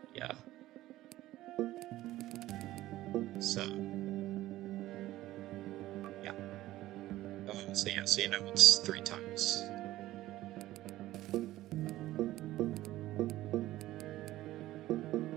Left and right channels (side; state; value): left; quieter; 15.7 dB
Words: Yeah. So yeah. So yeah, so it's 3 times.